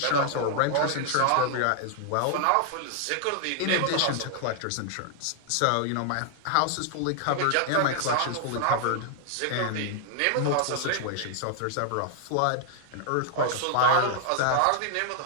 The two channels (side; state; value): both; different; correlation 0.00